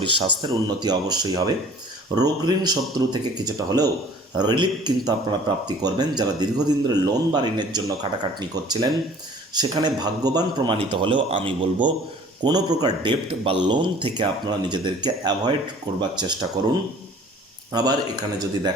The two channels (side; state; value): both; normal; correlation 0.50